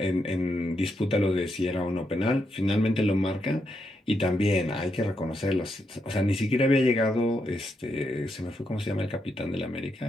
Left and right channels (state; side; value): normal; both; correlation 0.81